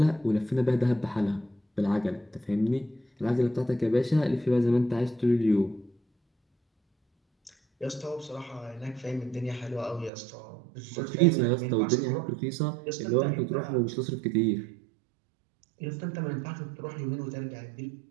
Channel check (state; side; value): drops out; left; at 10.1 s